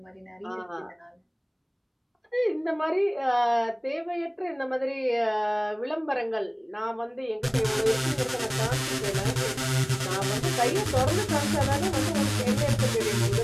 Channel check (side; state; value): both; identical; correlation 1.00